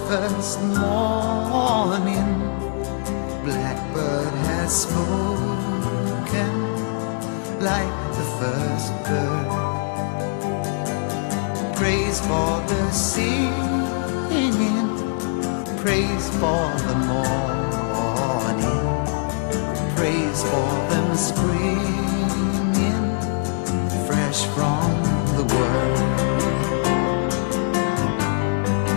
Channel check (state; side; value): silent; right; digital silence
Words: first morning. Blackbird has spoken like the first bird. Praise for the singing, praise for the morning, praise for them springing fresh from the world.